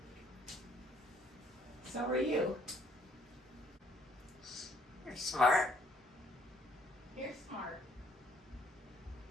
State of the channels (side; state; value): both; normal; correlation 0.64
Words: So are you. You're smart. You're smart.